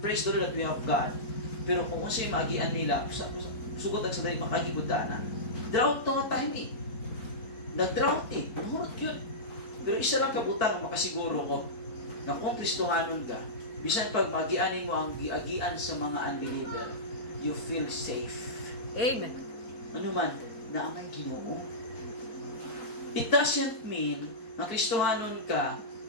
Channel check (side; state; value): right; late; 4.5 ms